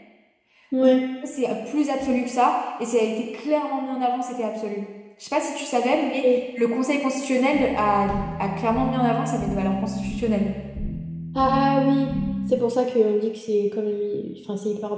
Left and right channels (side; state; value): both; identical; correlation 1.00